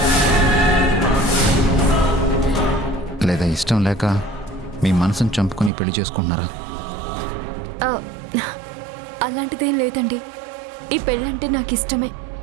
లేదా ఇష్టం లేక మీ మనసును చంపుకొని పెళ్లి చేసుకుంటున్నారా? ఆ, అలాంటిదేం లేదండి. ఈ పెళ్ళంటే నాకు ఇష్టమే.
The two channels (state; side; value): drops out; left; at 5.7 s